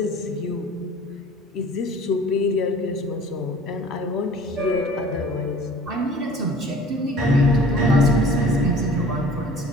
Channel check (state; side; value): normal; both; correlation 0.46